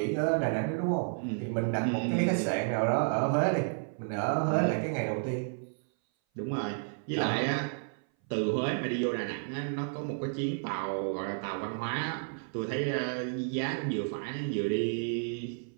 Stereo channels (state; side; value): silent; left; 57 dB below the other